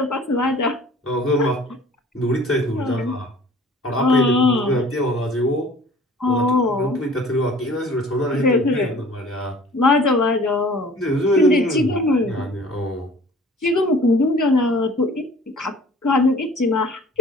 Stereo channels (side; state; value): both; normal; correlation 0.49